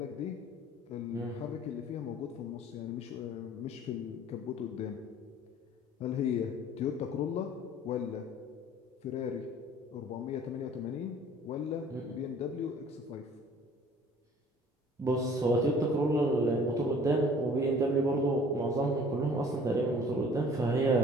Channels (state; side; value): normal; both; correlation 0.51